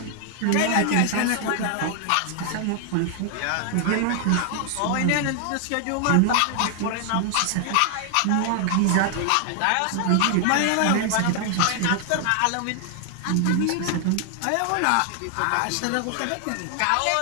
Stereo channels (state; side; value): different; both; correlation 0.00